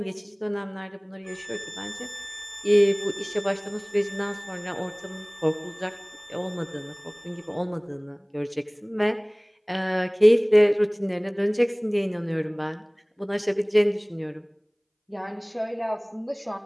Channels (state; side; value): identical; both; correlation 1.00